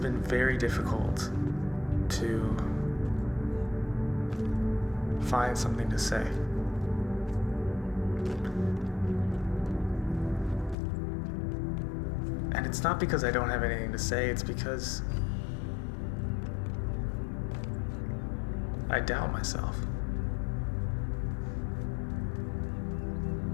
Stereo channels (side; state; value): right; drops out; at 10.8 s